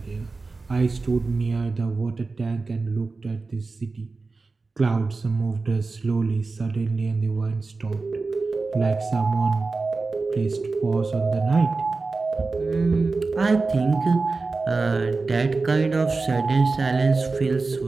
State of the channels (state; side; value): quieter; left; 3.9 dB